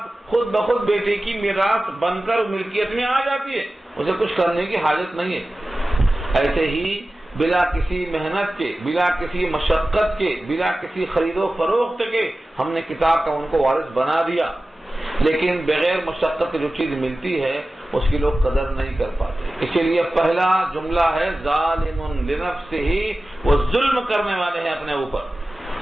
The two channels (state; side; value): normal; both; correlation 0.95